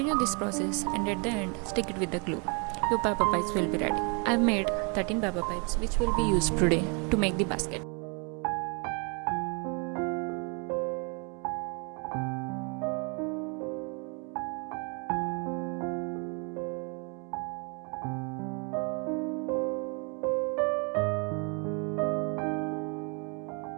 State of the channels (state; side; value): quieter; left; 34.6 dB